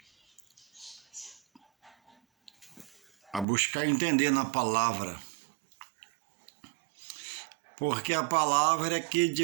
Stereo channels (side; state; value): left; drops out; at 3.5 s